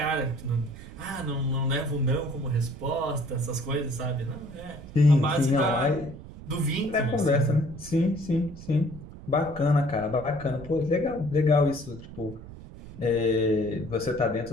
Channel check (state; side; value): noise; right; rumble, 15 dB below the sound